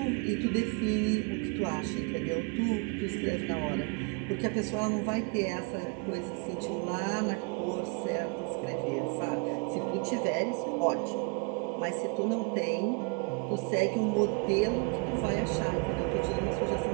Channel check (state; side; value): quieter; left; 33.6 dB